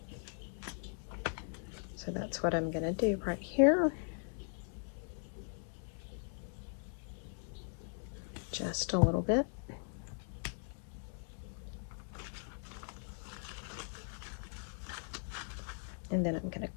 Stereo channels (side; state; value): right; silent; 52 dB below the other